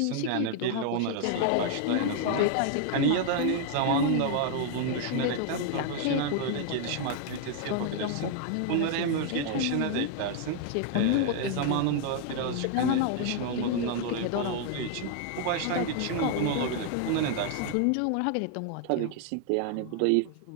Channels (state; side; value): different; both; correlation 0.00